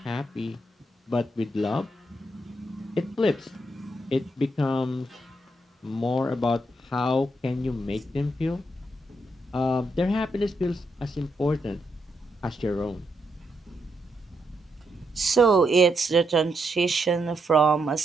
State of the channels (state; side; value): normal; both; correlation 0.80